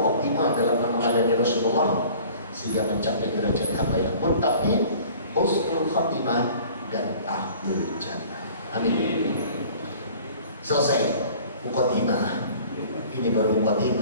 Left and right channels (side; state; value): both; inverted; correlation -0.48